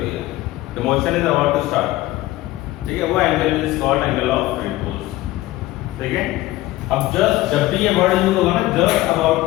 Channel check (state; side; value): quieter; right; 17.3 dB